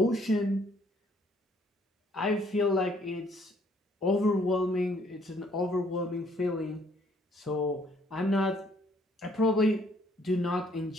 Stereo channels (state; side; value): normal; both; correlation 0.64